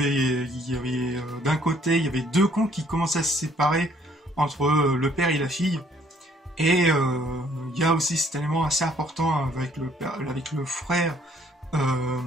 il y avait d'un côté, il y avait deux camps qui commençaient à se séparer entre le père et la fille, et il y a aussi cet élément assez important avec le frère,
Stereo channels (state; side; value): normal; both; correlation 0.63